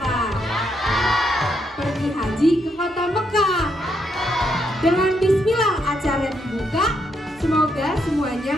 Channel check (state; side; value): normal; both; correlation 0.78